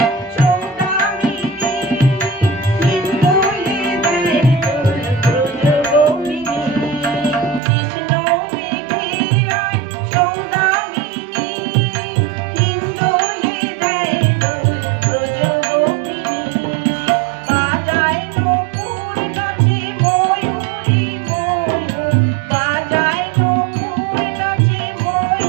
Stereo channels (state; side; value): drops out; left; at 7.6 s